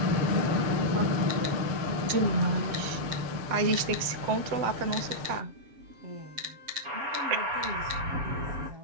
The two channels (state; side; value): late; left; 7.7 ms